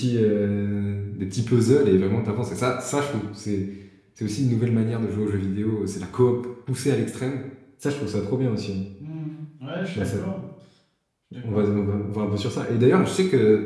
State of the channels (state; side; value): identical; both; correlation 1.00